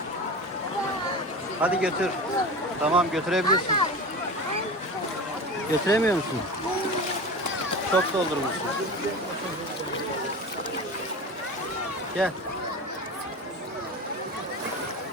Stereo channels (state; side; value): normal; both; correlation 0.30